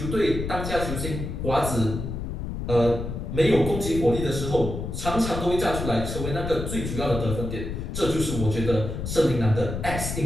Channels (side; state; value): left; noise; rumble, 5 dB below the sound